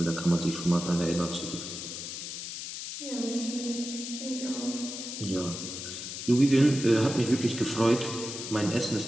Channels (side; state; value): left; noise; hiss, 7 dB below the sound